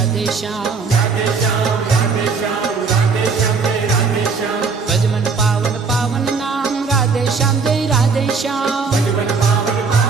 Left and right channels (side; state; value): left; quieter; 4.9 dB